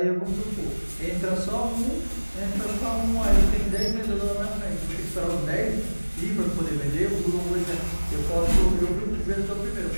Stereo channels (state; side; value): inverted; both; correlation -1.00